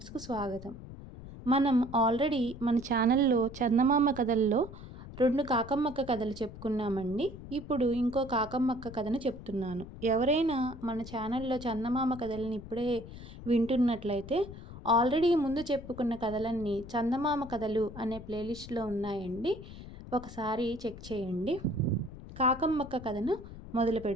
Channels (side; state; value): left; noise; rumble, 14 dB below the sound